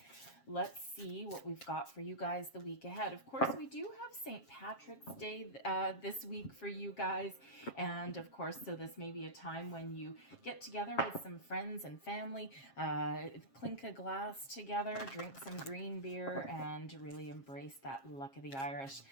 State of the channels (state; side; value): late; right; 7.4 ms